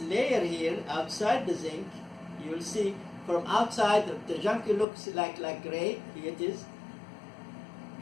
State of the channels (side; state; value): right; drops out; at 4.9 s